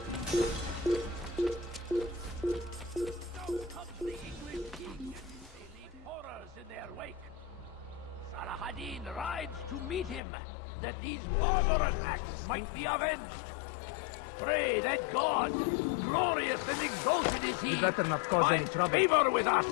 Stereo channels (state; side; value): drops out; right; at 10.2 s